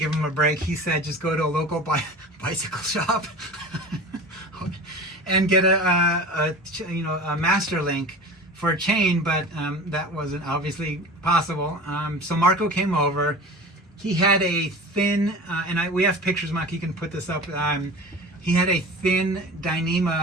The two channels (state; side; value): normal; both; correlation 0.36